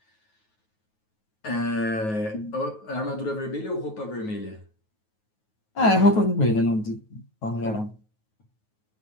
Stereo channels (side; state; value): right; late; 9.3 ms